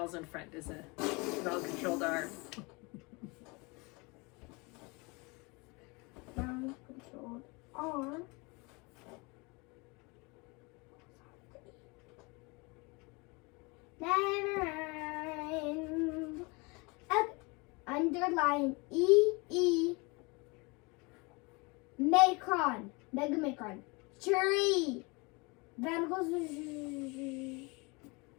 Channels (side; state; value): right; quieter; 27.8 dB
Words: in front is a vowel controlled R. Vowel controlled R. Never mind. Underline E. Macron. Mega Macron. Tree. Then goes